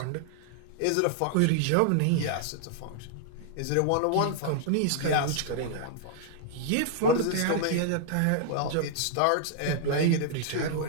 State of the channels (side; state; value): both; different; correlation -0.01